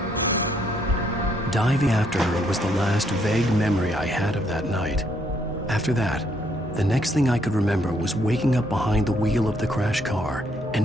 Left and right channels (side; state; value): both; normal; correlation 0.71